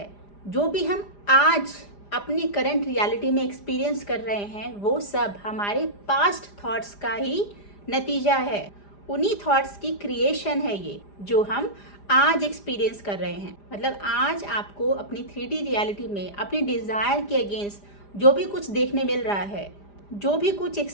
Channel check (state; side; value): late; right; 5.0 ms